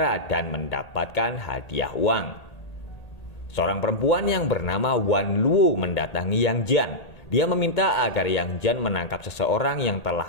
dan mendapatkan hadiah uang. Seorang perempuan yang bernama Wan Luo mendatangi Yang Jian. Dia meminta agar Yang Jian menangkap seseorang yang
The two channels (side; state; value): right; late; 1.8 ms